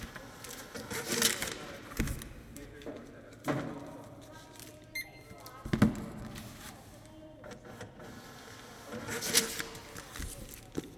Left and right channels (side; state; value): both; identical; correlation 1.00